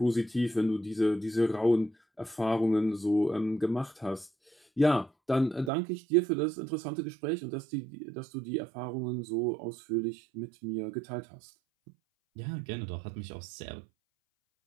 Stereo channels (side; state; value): left; drops out; at 5.7 s